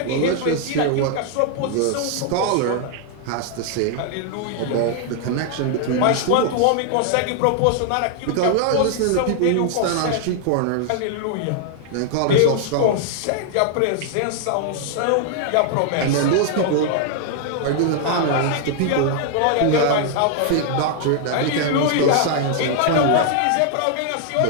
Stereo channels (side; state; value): both; different; correlation 0.00